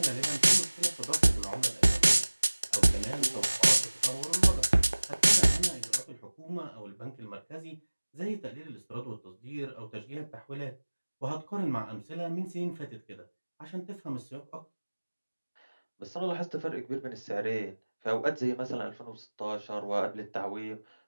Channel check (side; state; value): both; inverted; correlation -1.00